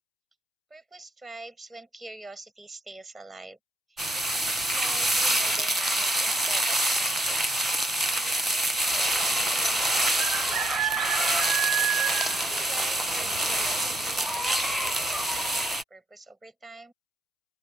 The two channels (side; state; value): both; normal; correlation 0.73